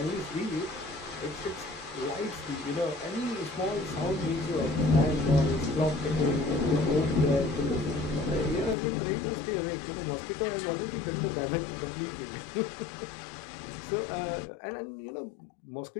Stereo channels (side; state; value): right; drops out; at 8.8 s